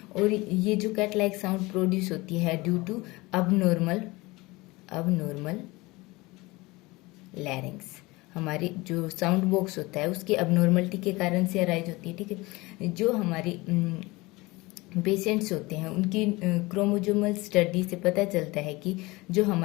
और ये जो कैट लाइक साउंड प्रोड्यूस होती है ड्यू टू अबनॉर्मल लैरिंग्स, हमारी जो साउंड बॉक्स होता है उसकी अबनॉर्मलिटी के कारण से अराइज होती है, ठीक है। जो हमारी पेशेंट्स होते हैं उनकी क्रोमोजोमल स्टडी से पता चलता है कि जो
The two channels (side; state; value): right; quieter; 22.3 dB